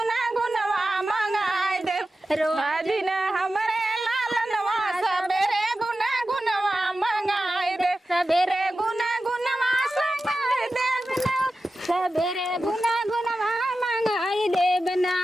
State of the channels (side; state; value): both; normal; correlation 0.93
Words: गुनवा मंगाए दे रोज ने हमरे लालनवा सबेरे गुना गुनवा मंगाए दे सबेरे गुना गुनवा मंगाए दे सबेरे गुना गुनवा मंगाई देबना